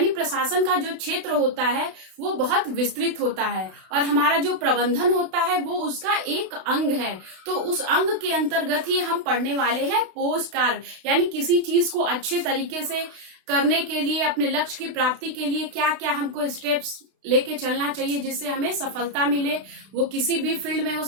प्रशासन का जो क्षेत्र होता है वो बहुत विस्तृत होता है और हमारा जो प्रबंधन होता है वो उसका एक अंग है। तो उस अंग के अंतर्गत ही हम पढ़ने वाले हैं पोस्ट कार्ड। यानी किसी चीज को अच्छे तरीके से करने के लिए, अपने लक्ष्य की प्राप्ति के लिए क्या क्या हमको स्टेप्स लेके चलना चाहिए जिससे हमें सफलता मिले। वो किसी भी फील्ड में हो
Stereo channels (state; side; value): late; left; 32 ms